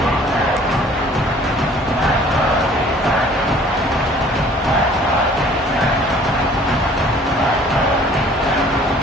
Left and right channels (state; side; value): normal; both; correlation 0.53